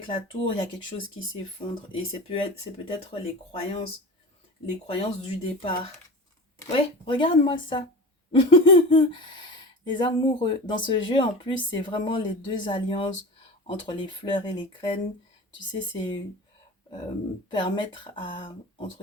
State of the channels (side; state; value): both; normal; correlation 0.32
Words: la tour, il y a quelque chose qui s'effondre et c'est peut-être les croyances du départ. Ouais, regarde-moi ça. Les amoureux. Dans ce jeu, en plus, c'est vraiment les deux alliances entre les fleurs et les graines. Tu sais, c'est permettre à,